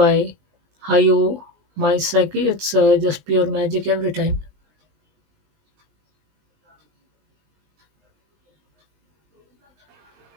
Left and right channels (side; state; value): left; late; 20 ms